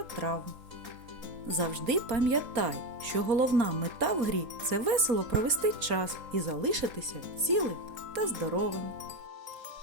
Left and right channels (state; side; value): late; left; 4.3 ms